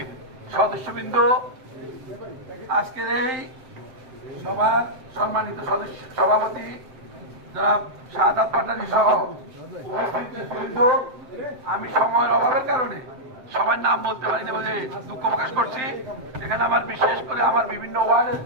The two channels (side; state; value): left; late; 7.7 ms